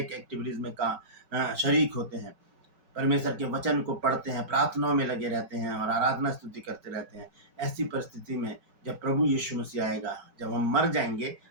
एक्टिविटीज़ में शरीक होते हैं, परमेश्वर के वचन को पढ़ते हैं, प्रार्थनाओं में लगे रहते हैं और आराधना स्तुति करते रहते हैं। ऐसी परिस्थिति में जब प्रभु यीशु मसीह आएगा, जब हम मर जाएंगे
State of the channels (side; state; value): left; late; 5.3 ms